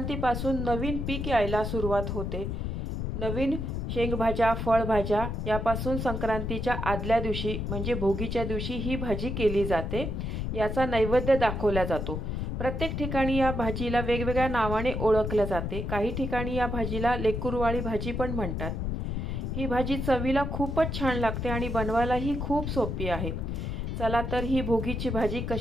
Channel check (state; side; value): noise; left; rumble, 3 dB below the sound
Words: नवीन पीक यायला सुरुवात होते। नवीन शेंगभाज्या, फळभाज्या यापासून संक्रांतीच्या आदल्या दिवशी म्हणजे भोगीच्या दिवशी ही भाजी केली जाते। याचा नैवेद्य दाखवला जातो। प्रत्येक ठिकाणी या भाजीला वेगवेगळ्या नावाने ओळखले जाते। काही ठिकाणी या भाजीला लेकुरवाळी भाजी पण म्हणतात। ही भाजी चवीला खूपच छान लागते आणि बनवायलाही खूप सोपी आहे। चला तर ही भोगीची भाजी